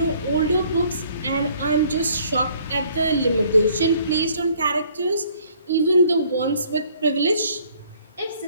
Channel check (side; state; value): both; inverted; correlation -0.60